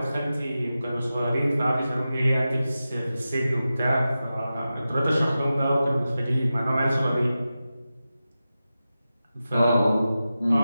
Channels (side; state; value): both; inverted; correlation -0.93